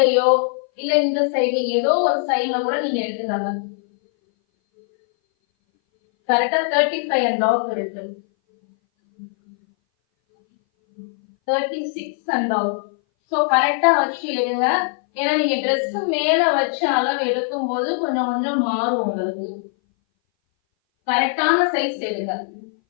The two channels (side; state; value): right; silent; 60 dB below the other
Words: இல்ல இந்த சைடு ஏதோ ஒரு சைட்ல கூட நீங்க எடுத்துக்காங்க. கரெக்டா 35.5 இருக்கு. 36.5. ஸோ கரெக்டா வச்சு எடுங்க. ஏன்னா நீங்க ட்ரெஸ் மேல வச்சு அளவு எடுக்கும் போது கொஞ்சம் கொஞ்சம் மாறும் உங்களுக்கு. கரெக்டான சைஸ் எடுங்க.